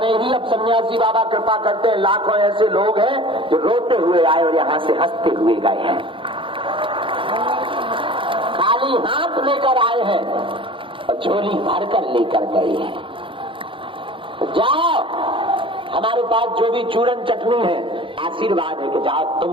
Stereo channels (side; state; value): left; late; 0.25 ms